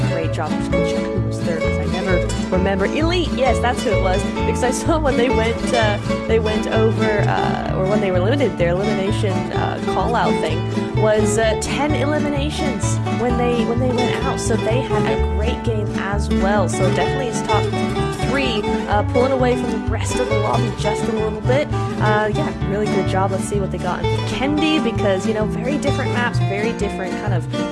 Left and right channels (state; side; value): identical; both; correlation 1.00